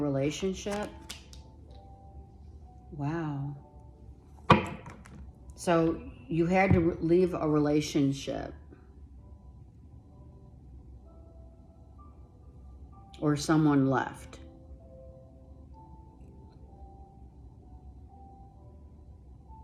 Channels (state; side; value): identical; both; correlation 1.00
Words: Wow. So you had to leave a relationship. Or someone left.